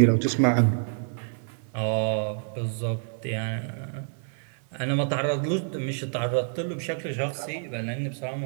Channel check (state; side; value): silent; left; 60 dB below the other